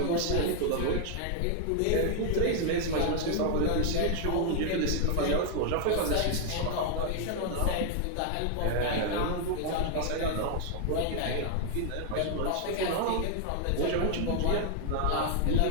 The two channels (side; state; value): both; different; correlation 0.00